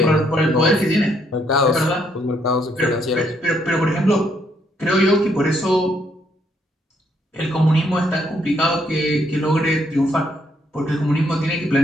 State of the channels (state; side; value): normal; both; correlation 0.72